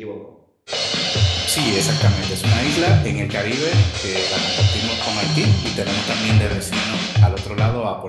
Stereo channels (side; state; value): both; identical; correlation 1.00